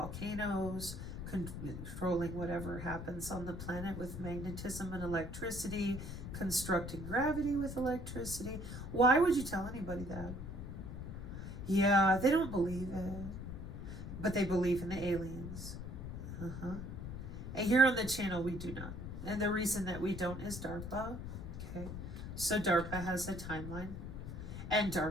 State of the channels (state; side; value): noise; left; rumble, 7 dB below the sound